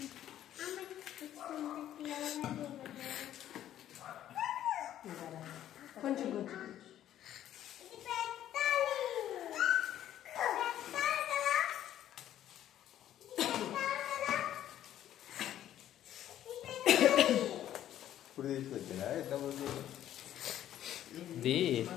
కొంచెం గుచ్చు. ఇప్పుడు తీసుకొచ్చారా ఎంతమంది? ఇది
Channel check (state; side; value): quieter; right; 11.8 dB